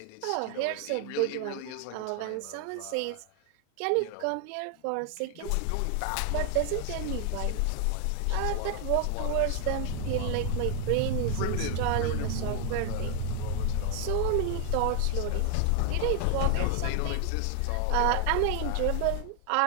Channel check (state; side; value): different; both; correlation 0.00